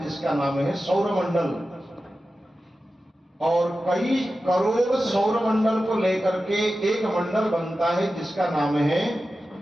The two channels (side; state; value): both; normal; correlation 0.93